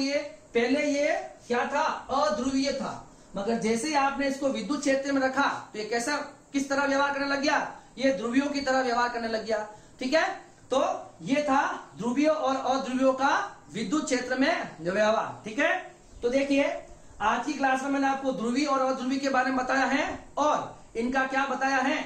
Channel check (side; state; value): both; identical; correlation 1.00